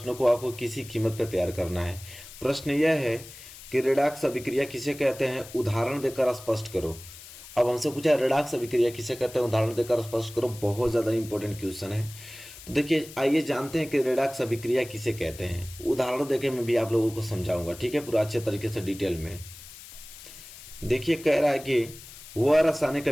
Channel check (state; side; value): noise; left; hiss, 16 dB below the sound